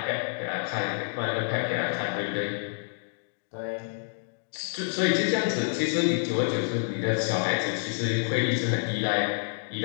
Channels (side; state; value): right; silent; digital silence